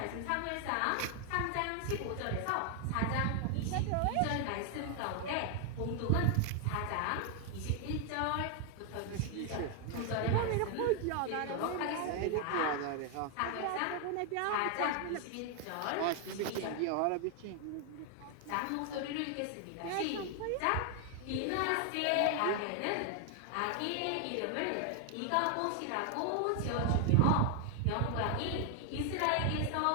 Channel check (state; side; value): different; both; correlation 0.00